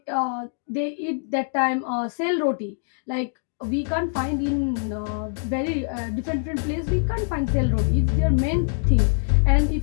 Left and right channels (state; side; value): silent; right; digital silence